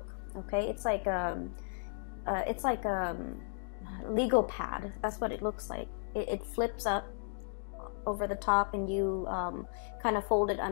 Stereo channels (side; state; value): right; silent; digital silence